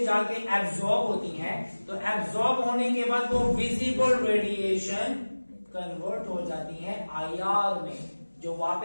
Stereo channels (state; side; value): inverted; both; correlation -1.00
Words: जाके एब्जॉर्ब होती हैं तो एब्जॉर्ब होने के बाद वो विजिबल रेडिएशन कन्वर्ट हो जाती हैं आईआर में, जो